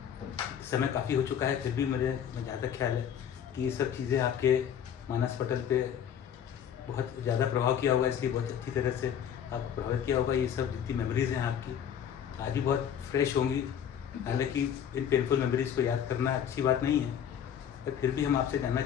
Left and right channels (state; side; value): quieter; right; 8.9 dB